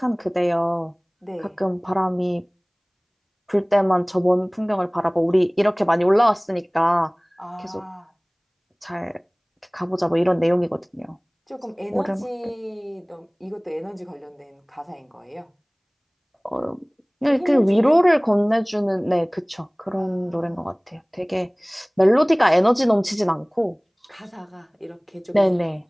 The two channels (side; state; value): both; identical; correlation 1.00